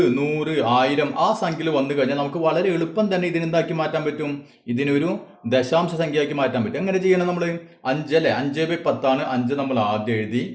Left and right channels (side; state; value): both; identical; correlation 1.00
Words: 100, 1000 ആ സംഖ്യയിൽ വന്നു കഴിഞ്ഞാൽ നമുക്ക് വളരെ എളുപ്പം തന്നെ ഇതിനെന്താക്കി മാറ്റാൻ പറ്റും, ഇതിനൊരു ദശാംശ സംഖ്യയാക്കി മാറ്റാൻ പറ്റും. എങ്ങനെ ചെയ്യണം നമ്മൾ? 5 അല്ലേ, 5/10 ആണ്. 5 നമ്മൾ ആദ്യം എഴുതി.